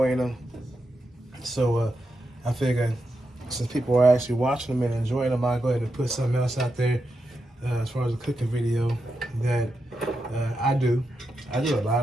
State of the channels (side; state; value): both; normal; correlation 0.87